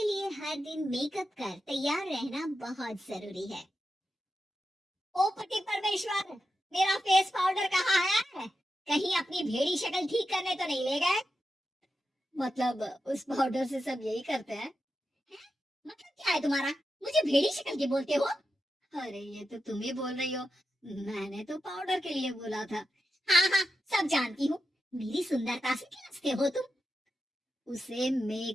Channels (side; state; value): both; normal; correlation 0.89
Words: लिए हर दिन मेकअप कर तैयार रहना बहुत जरूरी है। ओ पति परमेश्वर, मेरा फेस पाउडर कहाँ है? कहीं अपनी भेड़ी शक्ल ठीक करने तो नहीं ले गए? मतलब उस पाउडर से सब यही करते हैं? मतलब क्या है तुम्हारा? मुझे भेड़ी शक्ल की बोलते हो? अरे ये तो तुम ही बोल रही हो, मैंने तो पाउडर के लिए बोला था। हाँ हाँ, सब जानती हूँ। मेरी सुंदरता से खिलचते हो तुम। उसे